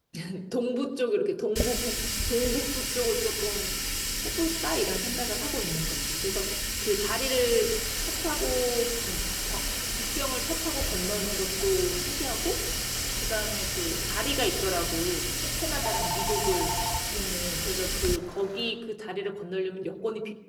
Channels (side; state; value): both; identical; correlation 1.00